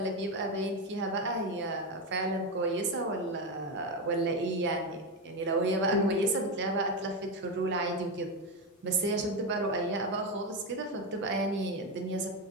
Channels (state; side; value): normal; both; correlation 0.12